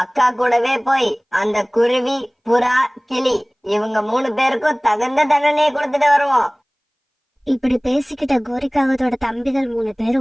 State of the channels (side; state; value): both; identical; correlation 1.00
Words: அக்கா கூடவே போய் அந்த குருவி, புறா, கிளி இவங்க 3 பேருக்கும் தகுந்த தண்டனையை கொடுத்துட்டு வருவோம். இப்படி பேசிக்கிட்ட கோரிக்காகத்தோட தம்பிகள் 3